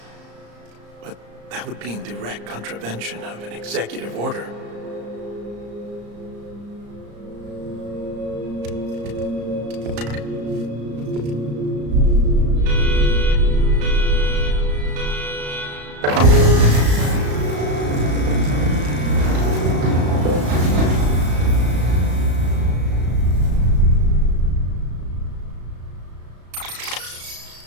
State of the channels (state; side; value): late; left; 34 ms